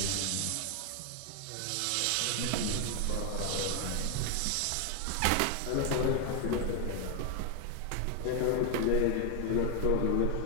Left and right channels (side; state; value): both; different; correlation 0.00